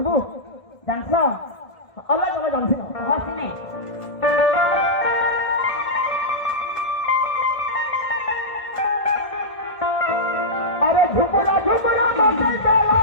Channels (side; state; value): right; late; 1.3 ms